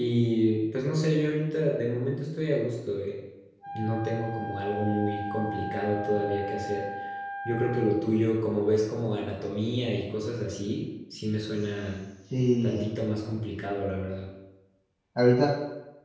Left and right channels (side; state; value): both; identical; correlation 1.00